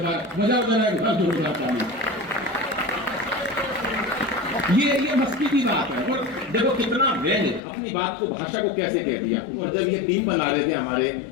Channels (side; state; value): right; drops out; at 7.6 s